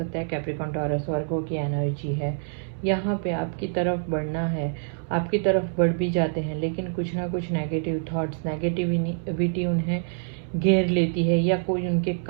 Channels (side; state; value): left; silent; digital silence